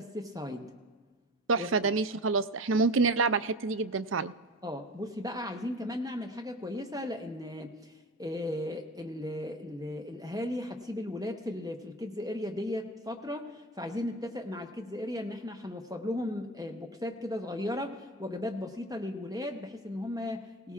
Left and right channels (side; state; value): both; normal; correlation 0.31